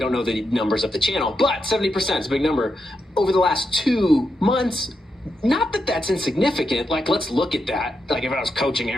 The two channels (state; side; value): normal; both; correlation 0.84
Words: know the numbers of the channel, but 70% is a big number. Over the last 2 months, not that that's insignificant. Like, let's look at that. Like, if I was coaching